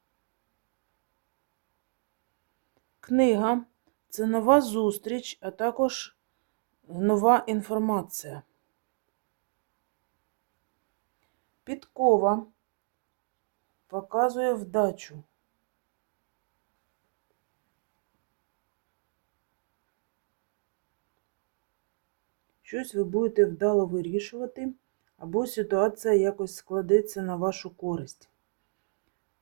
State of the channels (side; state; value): left; silent; digital silence